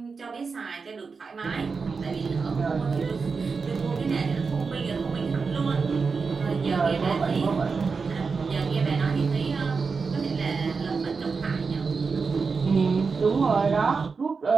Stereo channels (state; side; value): quieter; left; 4.9 dB